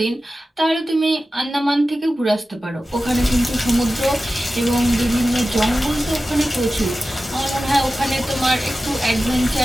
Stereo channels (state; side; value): normal; both; correlation 0.95